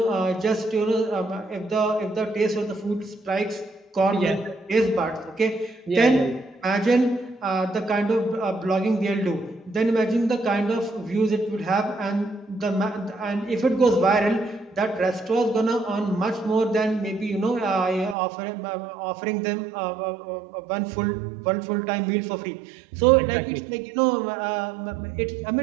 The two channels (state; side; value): drops out; left; at 18.2 s